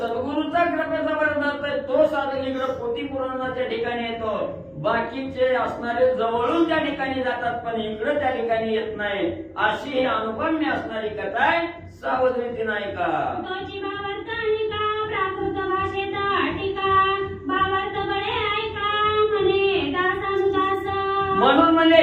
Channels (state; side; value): identical; both; correlation 1.00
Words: कृपेचा वरदहस्त आहे तो साधक इकडं पोथी पुराणाच्या ठिकाणी येतो. बाकीचे असणारे जवळून त्या ठिकाणी जातात पण इकडं त्या ठिकाणी येत नाही. अशी ही अनुपम्य असणारी कथा आहे. सावध रीतीनं ऐका. तोची भावार्थ निका प्राकृत भाषेत टीका, भावार्थ बळे ऐका म्हणे दासानुदास. म्हणून म्हणजे